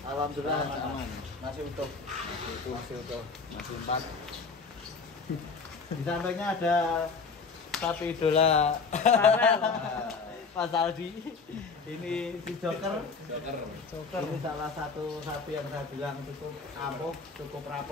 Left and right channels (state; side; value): quieter; right; 4.7 dB